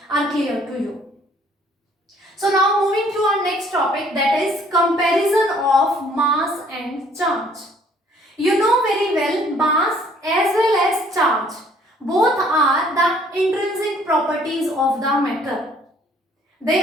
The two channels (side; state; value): both; normal; correlation 0.60